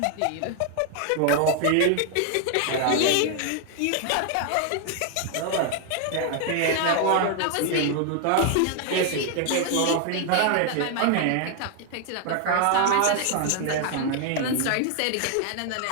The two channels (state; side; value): different; both; correlation 0.00